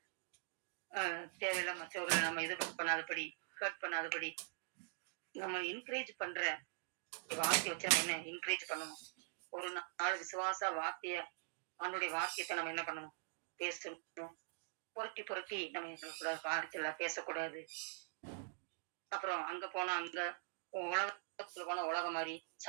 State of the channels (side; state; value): left; silent; digital silence